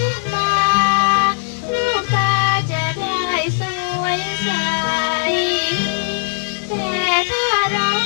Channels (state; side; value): silent; right; digital silence